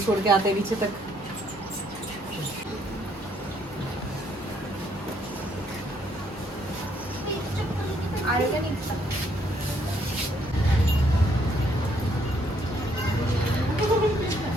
के आते हैं नीचे तक। आएगा नहीं।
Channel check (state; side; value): normal; both; correlation 0.69